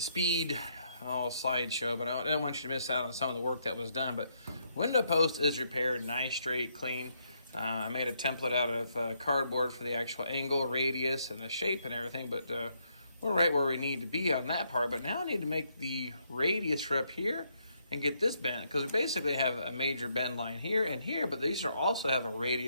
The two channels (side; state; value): both; inverted; correlation -0.75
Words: speed slideshow, but I don't want you to miss out on some of the work that was done. But window post is repaired, nice, straight, clean. I made a template out of cardboard for the actual angle, radius, and the shape and everything, but we're right where we need to be on that part. But now I need to make the radius for up here and get this bend, because we basically have a major bend line here and here, but these are also have a